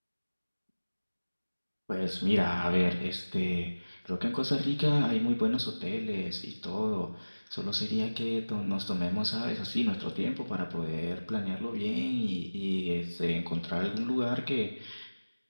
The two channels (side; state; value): both; inverted; correlation -1.00